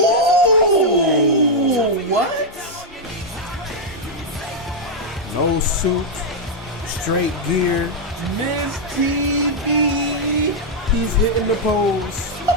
what? No suit, straight gear. Miss TV. He's hitting the pose.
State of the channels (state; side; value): normal; both; correlation -0.02